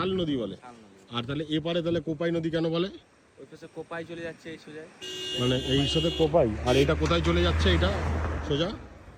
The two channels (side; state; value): both; identical; correlation 1.00